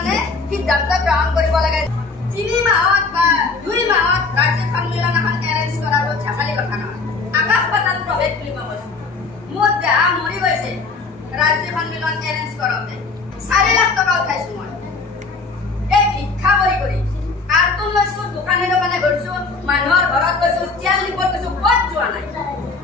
সিদ্ধান্ত গ্ৰহণ কৰিব লাগে। 3 মাহত বা 2 মাহত ৰাজ্যিক সন্মিলন এখন এৰেঞ্জ কৰাটো ঝাকালি কথা নহয়। আকাশ পাতাল প্ৰভেদ বুলি কোৱা কৈছে। মোৰ দেহা মৰি গৈছে ৰাজ্যিক সন্মিলন এৰেঞ্জ কৰোঁতে। 4 লাখ টকা উঠাইছো মই। এই ভিক্ষা কৰি কাৰ্টুন লৈছো, দোকানে দোকানে ঘূৰিছো, মানুহৰ ঘৰত গৈছো, তেল নিবত গৈছো, ক'ত যোৱা নাই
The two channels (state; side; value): quieter; right; 4.1 dB